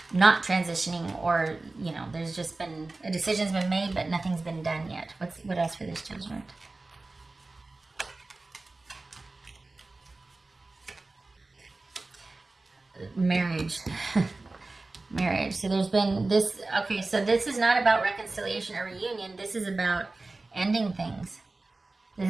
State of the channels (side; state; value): left; quieter; 3.3 dB